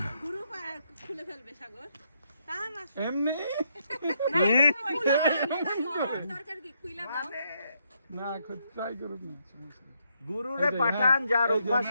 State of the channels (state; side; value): inverted; both; correlation -0.76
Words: গুরু খুলে ফেলবে সাগর টান আসো এমনি দরকার কি খুইলা দাও না খুব ট্রাই করুন না, সমস্যা নেই। গুরুরে পাঠান যার অভ্যাস